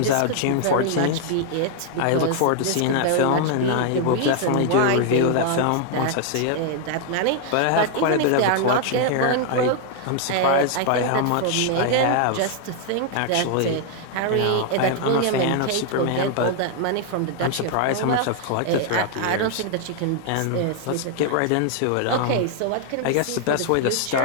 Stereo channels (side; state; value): both; different; correlation 0.00